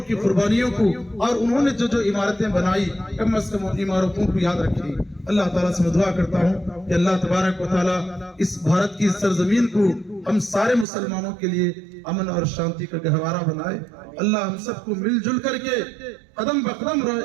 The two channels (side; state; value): left; drops out; at 10.9 s